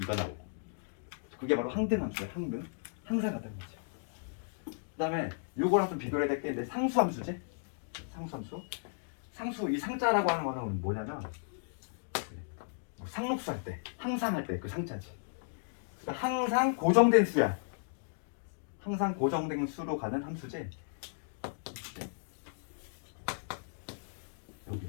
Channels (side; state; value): right; silent; digital silence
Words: 2가 나오고. 그게 바로 항등함수야. 항등. 항상 같다는 거지. 그 다음에 요거랑 좀 비교해야 될 게 이제 상수함수지. 상수 이 상자라고 하는 거는 뭐냐면 상록수 할 때, 항상 할 때 그 상자지. 그러니까 항상 고정된 수야. 항상 고정된 수로 가는 함수지.